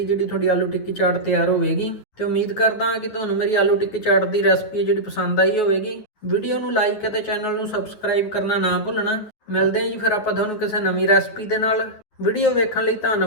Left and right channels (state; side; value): late; right; 9.6 ms